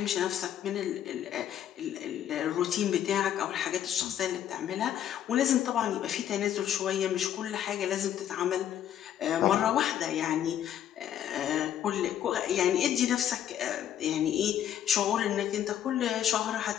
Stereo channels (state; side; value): quieter; right; 10.5 dB